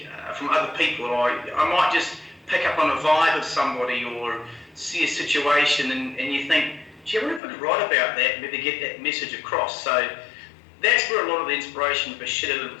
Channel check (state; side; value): drops out; right; at 7.4 s